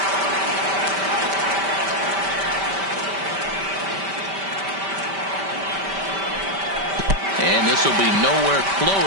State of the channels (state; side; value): late; left; 5.1 ms